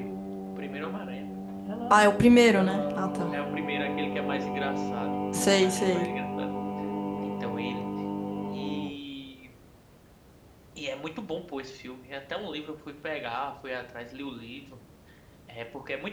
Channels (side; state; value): both; identical; correlation 1.00